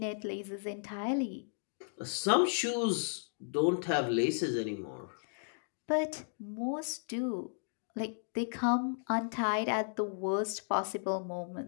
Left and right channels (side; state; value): right; silent; digital silence